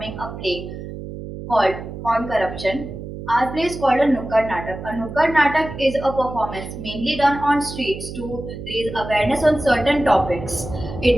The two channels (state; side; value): noise; right; hum, 10 dB below the sound